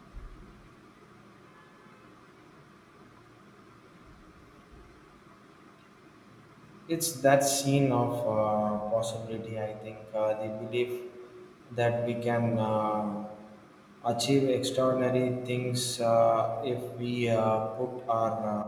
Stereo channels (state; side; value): identical; both; correlation 1.00